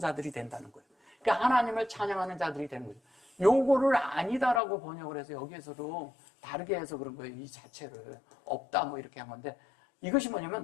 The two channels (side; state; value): right; drops out; at 4.6 s